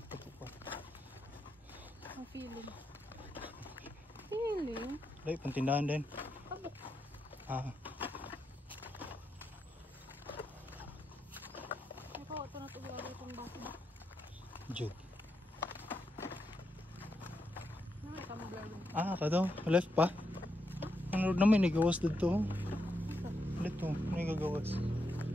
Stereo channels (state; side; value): normal; both; correlation 0.83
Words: pa ito pa. Ang feeling. Feeling? Dahil, pantindahan din. Abok. Ah, Ito, ito na ito gawin itong baso ba? Jug. Ano may tama gawin? Ah, kadaw. Left pa. Ano naman, nagawas dito. Dito, may gagawas.